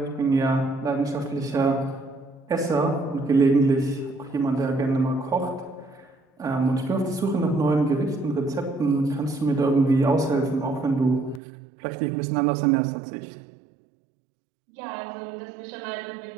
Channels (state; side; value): drops out; left; at 11.4 s